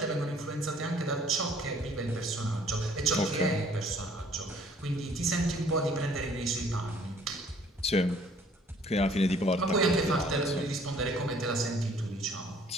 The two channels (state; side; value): normal; both; correlation 0.58